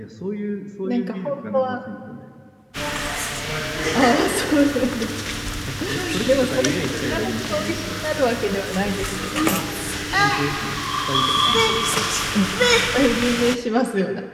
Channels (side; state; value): both; identical; correlation 1.00